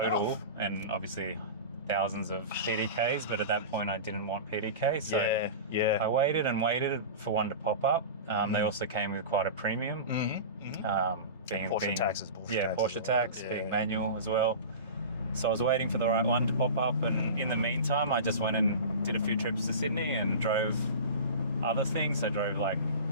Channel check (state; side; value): inverted; both; correlation -0.31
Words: enough. and obviously thousands of PDKs, but at that point I didn't want PDK, so I waited and waited for one to pop up. They also came with quite a premium, being Porsche taxes. Porsche tax, being manual as well. So I was waiting for the right one to pop up, and in the meantime I just went and did a few trips to Sydney and drove other things. I drove like